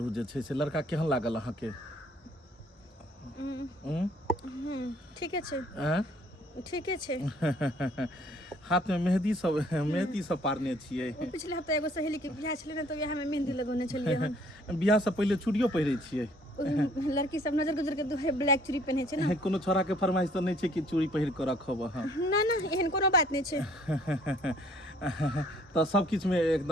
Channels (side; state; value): both; normal; correlation 0.60